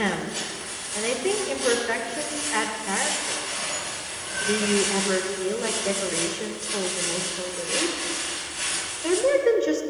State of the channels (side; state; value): both; identical; correlation 1.00